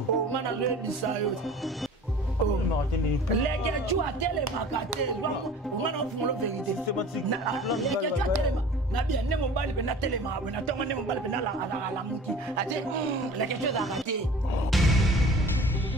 mana le bisayo oh non les que tu as télé makate moi non pour la vérité les que tu as télé na bien ne mobali pe na telema na tonga ne mobali pe na la muki ate la quelque chose à rater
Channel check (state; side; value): normal; both; correlation 0.43